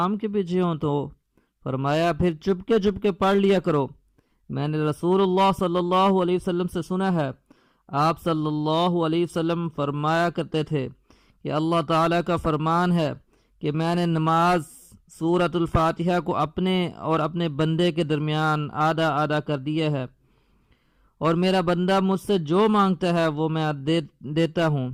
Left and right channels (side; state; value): both; identical; correlation 1.00